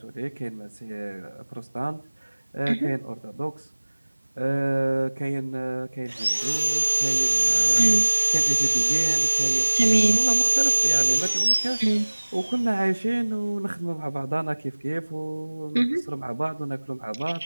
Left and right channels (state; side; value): inverted; both; correlation -1.00